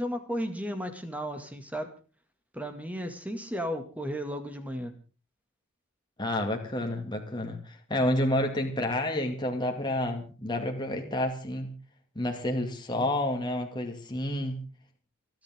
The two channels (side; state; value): both; normal; correlation 0.53